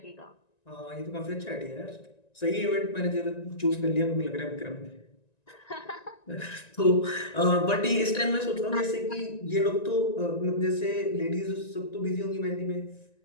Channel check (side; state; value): right; late; 1.9 ms